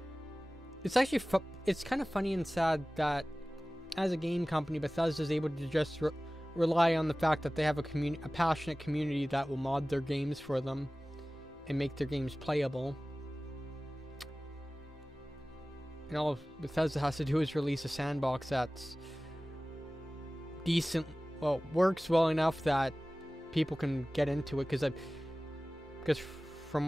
it's actually, it's kind of funny and sad that as a game company, Bethesda is able to just rely on the fact that they have a passionate community that will mod their games for them and make their games playable. And all Bethesda has to do is release a sandbox that's decent, well, works well enough that people can get into it, because from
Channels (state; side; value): normal; both; correlation 0.98